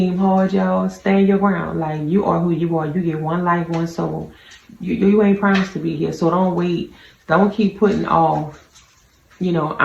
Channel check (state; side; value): identical; both; correlation 1.00